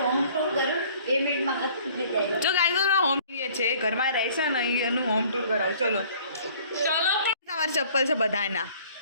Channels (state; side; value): inverted; both; correlation -0.54